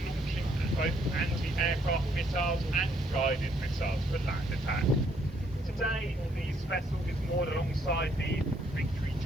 both anti-aircraft missiles and guided missiles for land attack. Today, this vessel is moored alongside the Victory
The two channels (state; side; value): normal; both; correlation 0.69